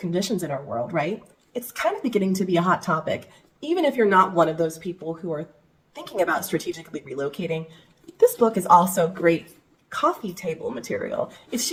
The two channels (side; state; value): both; identical; correlation 1.00